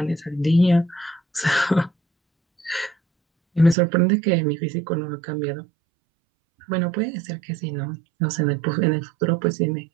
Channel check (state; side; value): drops out; left; at 3.8 s